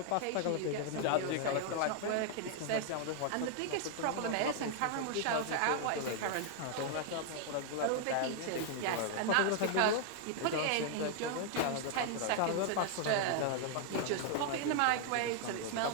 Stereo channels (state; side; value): different; both; correlation 0.00